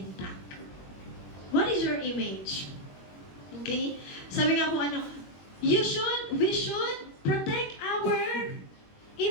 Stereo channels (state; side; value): late; right; 21 ms